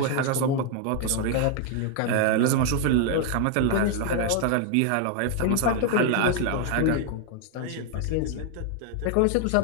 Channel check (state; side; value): different; both; correlation 0.00